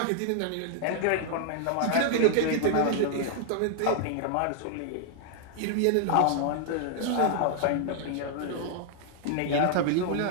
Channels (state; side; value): different; both; correlation 0.00